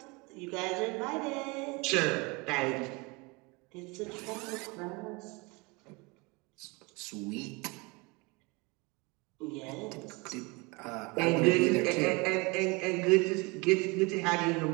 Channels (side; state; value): left; quieter; 27.1 dB